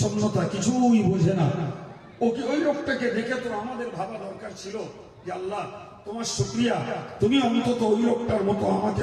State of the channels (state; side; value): identical; both; correlation 1.00